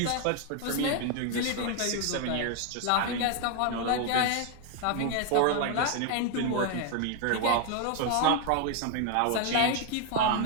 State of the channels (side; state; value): both; different; correlation 0.01